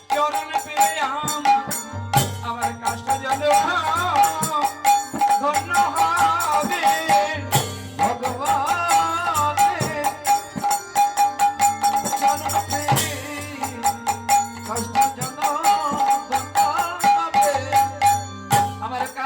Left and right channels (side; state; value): both; identical; correlation 1.00